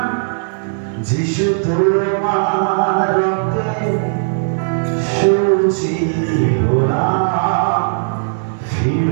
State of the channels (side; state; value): left; silent; digital silence